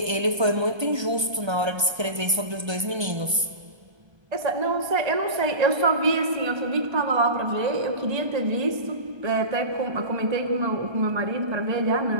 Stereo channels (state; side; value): late; left; 1.3 ms